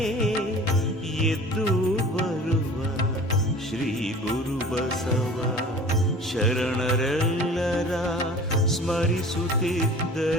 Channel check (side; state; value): both; normal; correlation 0.43